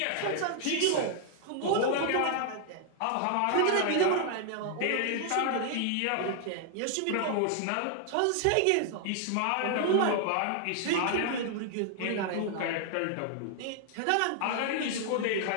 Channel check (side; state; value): both; different; correlation 0.00